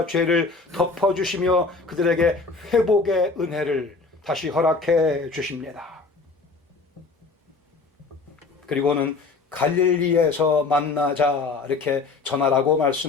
죄를 덮어주시며 그들에게 회복의 은혜를 다시 허락해 주십니다. 그리고는 갈릴리에서 만나자 이렇게 전하라고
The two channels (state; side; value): quieter; right; 4.0 dB